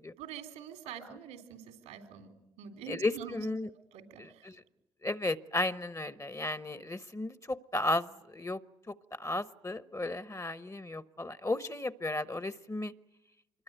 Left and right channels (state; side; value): normal; both; correlation 0.64